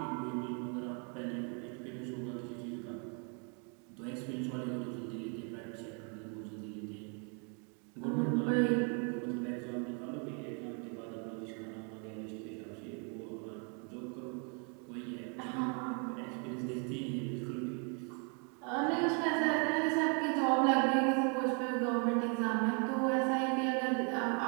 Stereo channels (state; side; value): quieter; left; 38.2 dB